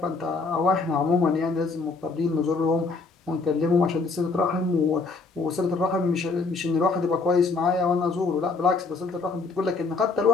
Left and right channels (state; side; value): quieter; right; 4.1 dB